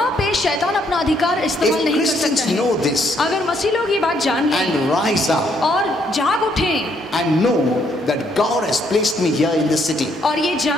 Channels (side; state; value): both; normal; correlation 0.71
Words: पे शैतान अपना अधिकार इस्तेमाल If नहीं कर Christians सकता है। know this अगर मसीह लोग ये बात जान लें and rise up और जाग उठें and know that God has placed me here in this city. और ये